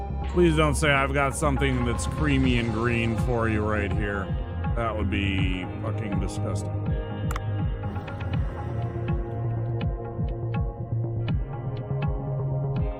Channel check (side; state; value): both; identical; correlation 1.00